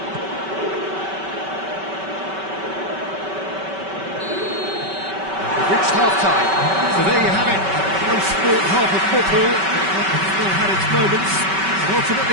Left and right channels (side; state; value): left; late; 5.2 ms